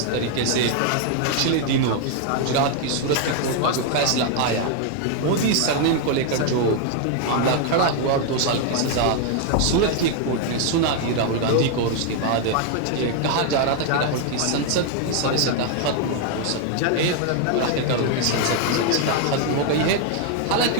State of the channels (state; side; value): different; both; correlation 0.00